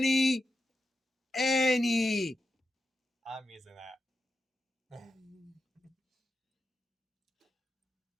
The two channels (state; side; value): normal; both; correlation 0.87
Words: I'm using that.